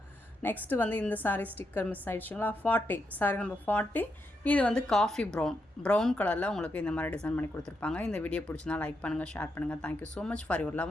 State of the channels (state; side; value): normal; both; correlation 0.82